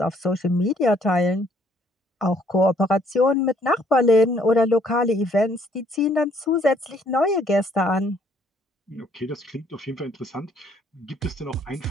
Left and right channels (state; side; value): normal; both; correlation 0.65